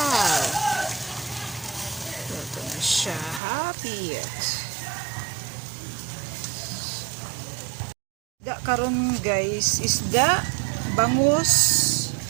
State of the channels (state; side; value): drops out; left; at 3.4 s